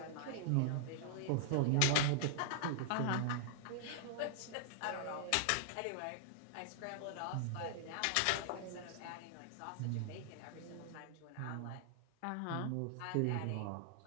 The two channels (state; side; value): different; both; correlation -0.01